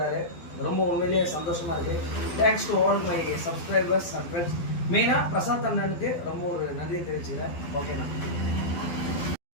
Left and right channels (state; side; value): late; right; 12 ms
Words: ரொம்ப உண்மையிலேயே சந்தோஷமாக இருக்குது. Thanks to all my subscribers and friends. மெயினாக பிரசாத் அண்ணனுக்கு ரொம்ப ஒரு நன்றியை தெரிவிச்சுக்கிறேன். ஓகேண்ணா.